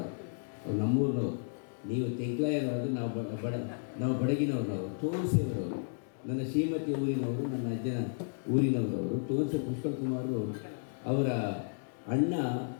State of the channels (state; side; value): silent; right; digital silence